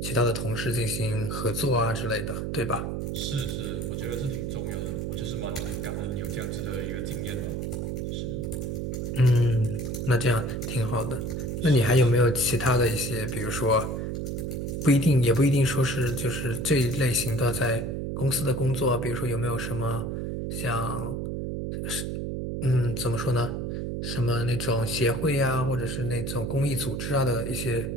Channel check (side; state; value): right; noise; hum, 3 dB below the sound